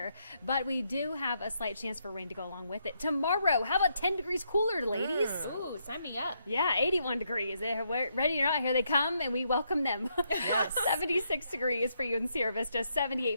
But we do have a slight chance for rain to go along with it. Tomorrow, how about 10 degrees cooler, ladies? Ooh, sign me up. Yeah, 81 degrees. They're ready or not, here they come, and we welcome them. 76 degrees for you in Sierra Vista,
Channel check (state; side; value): inverted; both; correlation -0.77